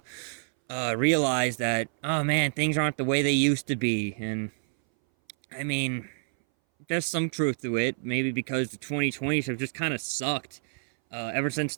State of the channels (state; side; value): silent; left; 59 dB below the other